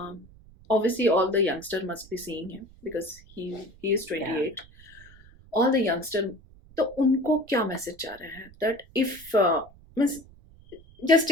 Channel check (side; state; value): right; noise; rumble, 24 dB below the sound